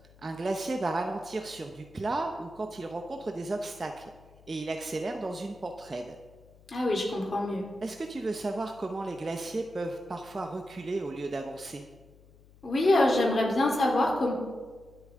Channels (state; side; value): noise; left; hum, 25 dB below the sound